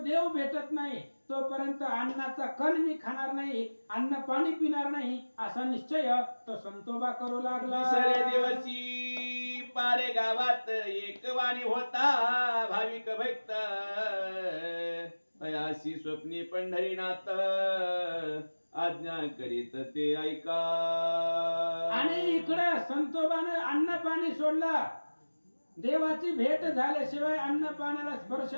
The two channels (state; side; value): inverted; both; correlation -1.00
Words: देव भेटत नाही तोपर्यंत अन्नाचा कण मी खाणार नाही, अन्न पाणी पिणार नाही, असा निश्चय तो संतोबा करू लागला. दुसऱ्या दिवशी पारे गावात एक वाणी होता भाविक भक्त. अयाशी स्वप्नी पंढरीनाथ आज्ञा करीत ते ऐका. आणि इकडे संतोबाने अन्न पाणी सोडला. देवाची भेट झाल्याशिवाय अन्न पाण्याला स्पर्श